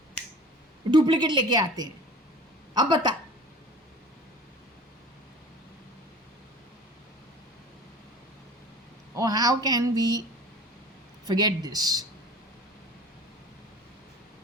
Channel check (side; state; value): both; normal; correlation 0.41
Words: डुप्लीकेट लेके आते हैं. अब बता, or how can we forget this?